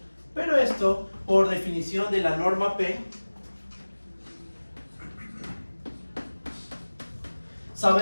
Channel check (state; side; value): inverted; both; correlation -1.00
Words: Pero esto, por definición de la norma P,